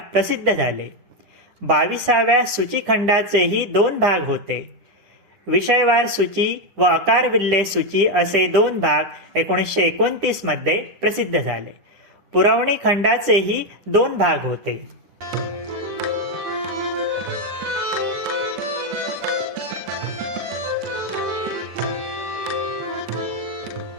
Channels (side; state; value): left; late; 9.9 ms